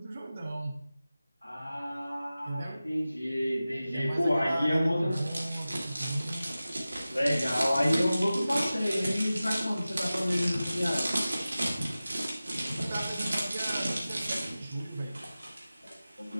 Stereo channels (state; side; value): inverted; both; correlation -0.96